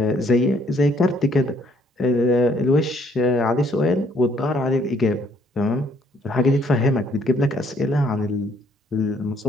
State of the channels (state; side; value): normal; both; correlation 0.65